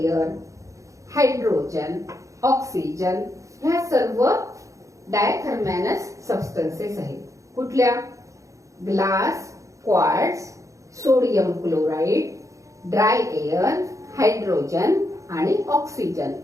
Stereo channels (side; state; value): left; late; 0.15 ms